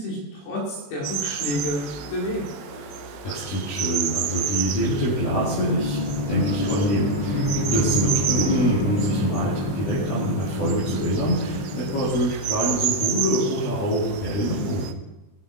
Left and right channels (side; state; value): right; late; 20 ms